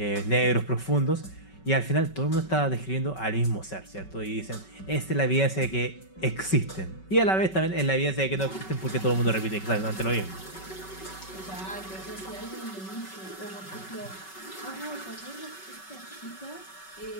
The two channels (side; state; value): right; late; 5.3 ms